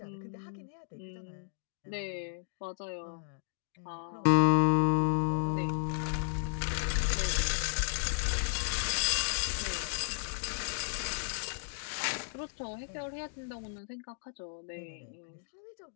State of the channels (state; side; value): silent; right; digital silence